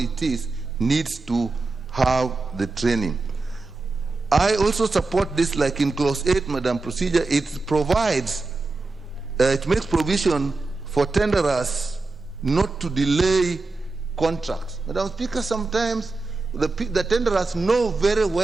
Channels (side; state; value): left; quieter; 3.5 dB